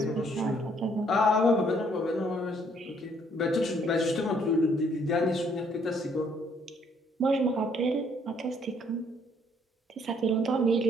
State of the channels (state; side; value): normal; both; correlation 0.66